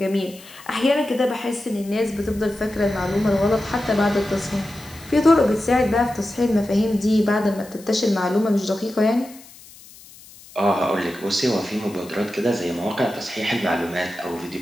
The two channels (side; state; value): left; noise; hiss, 21 dB below the sound